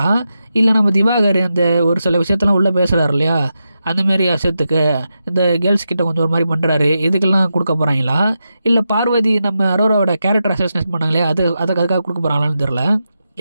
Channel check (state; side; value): inverted; both; correlation -0.88